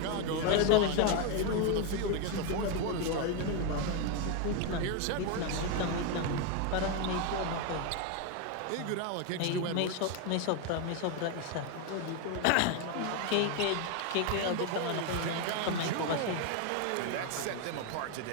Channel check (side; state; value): both; different; correlation 0.01